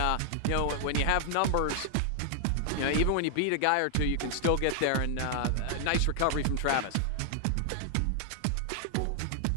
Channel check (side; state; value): both; different; correlation 0.00